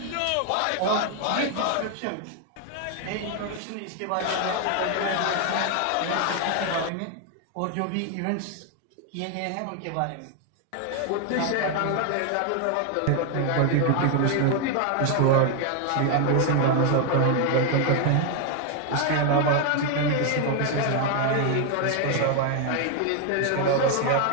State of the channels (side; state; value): both; different; correlation 0.01